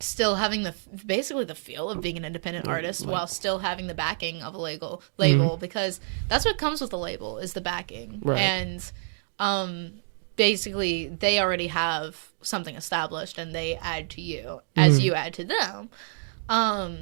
still having basically the feel of being an independent artist, while still having the backing of a label, because that's what comes with a label, is the backing. And basically they already have something established, and they add to you as you add to them.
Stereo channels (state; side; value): silent; left; digital silence